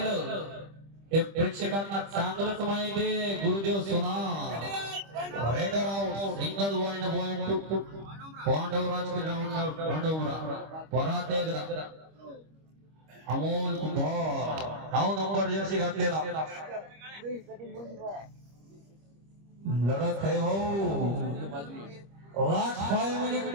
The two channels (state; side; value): late; left; 25 ms